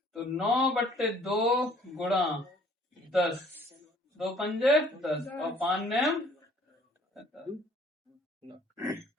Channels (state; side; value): normal; both; correlation 0.57